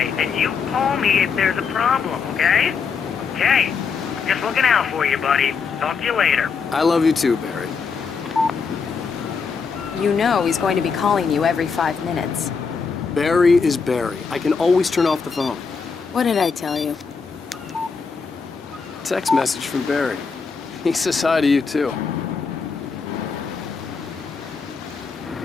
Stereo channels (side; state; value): right; quieter; 5.4 dB